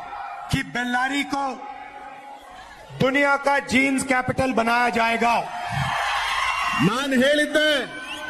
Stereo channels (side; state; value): both; identical; correlation 1.00